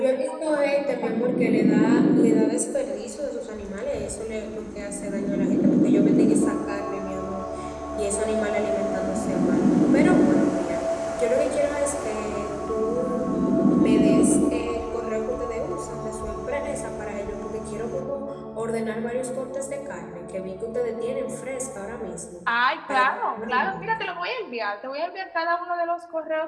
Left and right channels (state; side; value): identical; both; correlation 1.00